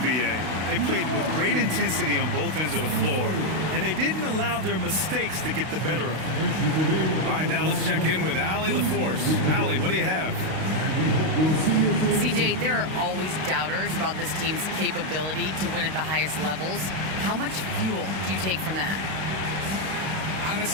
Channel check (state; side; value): late; left; 32 ms